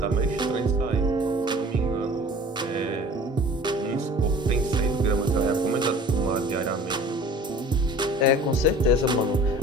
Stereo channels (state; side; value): normal; both; correlation 0.46